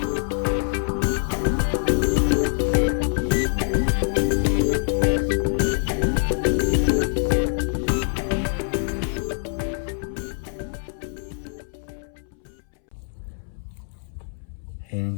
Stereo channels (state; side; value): silent; right; 62 dB below the other